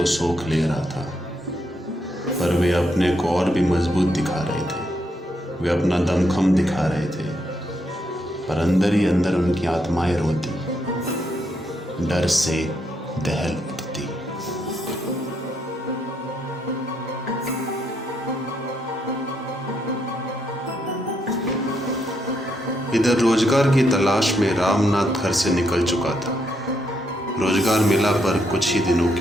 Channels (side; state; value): both; normal; correlation 0.77